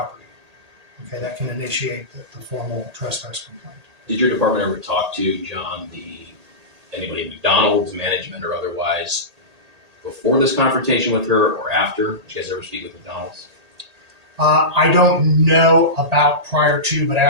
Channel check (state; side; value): late; left; 1.8 ms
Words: Okay, that can initiate the formal trespass complaint. Did your department ever talk to, John, anybody at McDonald's, management or otherwise, before this confrontation with her or after? Did you guys ever speak with McDonald's? I don't know about prior to, but